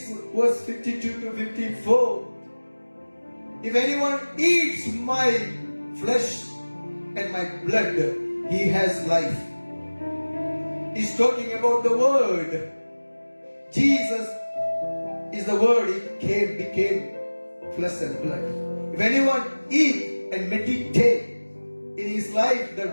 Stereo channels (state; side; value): inverted; both; correlation -1.00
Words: verse 52 to 54, if anyone eats my flesh and my blood, he has life. He's talking about the word. Jesus is the word. He became flesh and blood. If anyone eat and meditate in his life, the